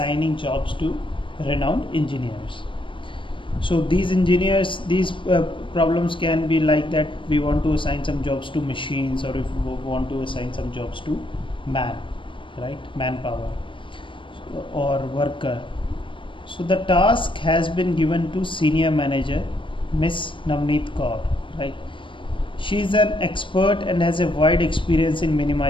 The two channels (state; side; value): late; right; 0.25 ms